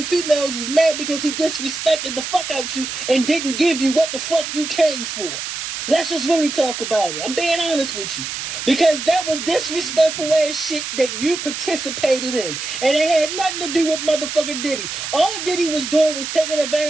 females is mad because he disrespected the fuck out you and didn't give you what the fuck you came for. Let's just really talk about it. I'm being honest with you. Because that was disrespectful ass shit that you participated in. And it had nothing to do with motherfucking Diddy. All Diddy was doing was taking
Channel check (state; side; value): noise; right; hiss, 6 dB below the sound